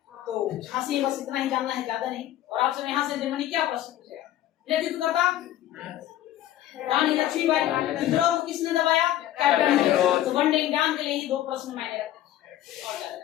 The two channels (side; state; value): right; quieter; 13.1 dB